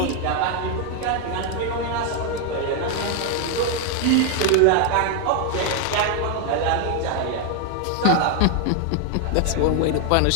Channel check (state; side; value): different; both; correlation 0.01